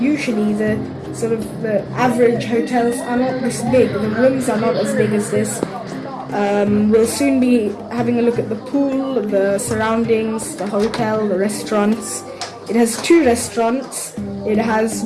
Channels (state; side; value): identical; both; correlation 1.00